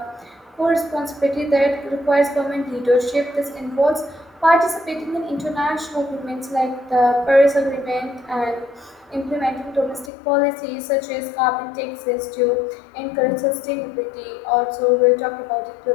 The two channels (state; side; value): drops out; right; at 10.1 s